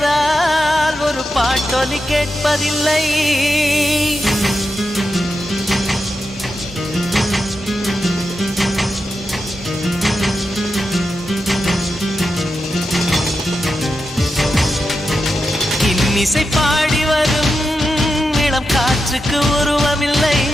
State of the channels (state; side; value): normal; both; correlation 0.89